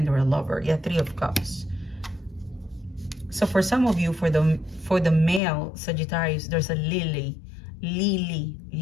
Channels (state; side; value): drops out; right; at 5.4 s